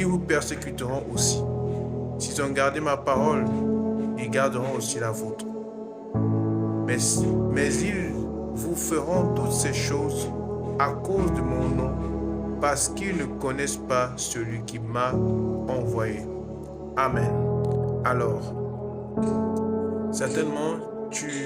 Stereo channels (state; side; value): identical; both; correlation 1.00